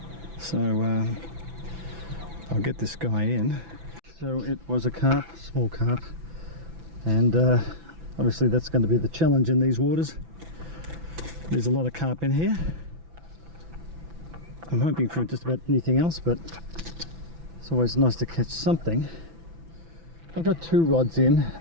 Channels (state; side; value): late; left; 6.0 ms